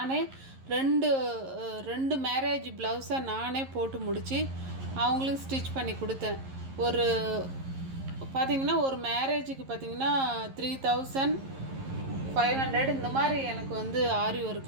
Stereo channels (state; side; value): late; left; 11 ms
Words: ரெண்டு மேரேஜ் ப்ளவுஸை நானே போட்டு முடித்து அவங்களுக்கு ஸ்டிச் பண்ணி கொடுத்தேன். பார்த்திங்கன்னா ஒரு மேரேஜுக்கு பார்த்திங்கன்னா 3500 இந்த மாதிரி எனக்கு வந்து ஆரி